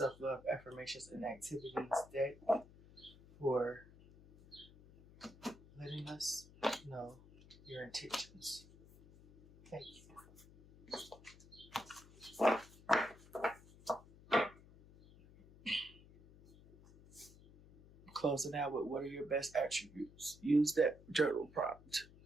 Affirmations and Activities deck, for letting us know your intentions. Thank you. Closing out with what are your best attributes? Use that journal prompt.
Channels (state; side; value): noise; left; hum, 22 dB below the sound